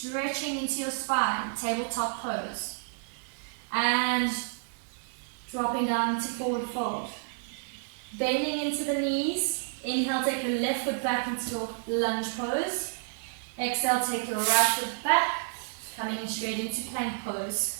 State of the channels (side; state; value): left; silent; 58 dB below the other